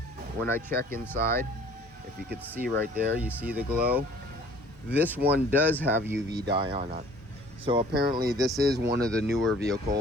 when I check inside, if you could see right there, you see the glow. This one does have UV dye on it. So apparently this is one of the newer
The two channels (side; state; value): both; normal; correlation 0.53